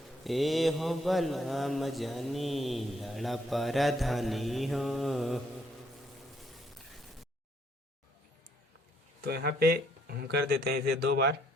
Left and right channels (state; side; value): normal; both; correlation 0.69